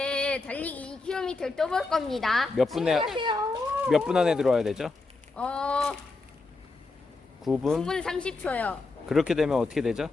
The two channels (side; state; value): right; quieter; 3.6 dB